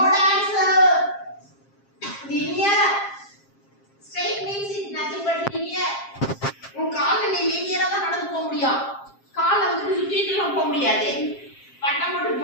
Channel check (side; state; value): right; late; 7.5 ms